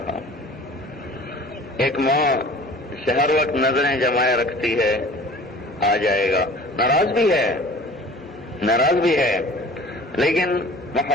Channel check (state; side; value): normal; both; correlation 0.45